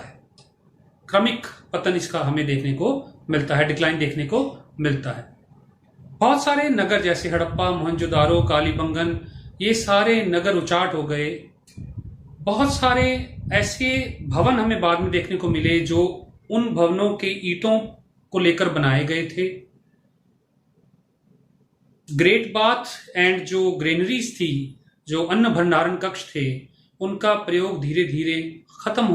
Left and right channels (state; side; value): identical; both; correlation 1.00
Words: क्रमिक पतन इसका हमें देखने को मिलता है, डिक्लाइन देखने को मिलता है। बहुत सारे नगर जैसे हड़प्पा, मोहनजोदारो, कालीबंगन, ये सारे नगर उचाट हो गए। बहुत सारे ऐसे भवन हमें बाद में देखने को मिले जो उन भवनों के ईंटों को लेकर बनाए गए थे। ग्रेट बाथ एंड जो ग्रेनरीज थी, जो अन्न भंडारण कक्ष थे, उनका प्रयोग धीरे धीरे खत्म